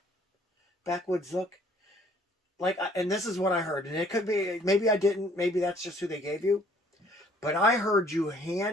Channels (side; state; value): both; normal; correlation 0.59